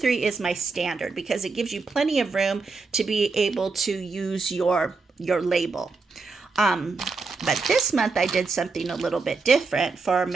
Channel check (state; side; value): quieter; left; 4.3 dB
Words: is my standard because it gives you plenty of room to be able to use your label. But this month I did something a little bit different for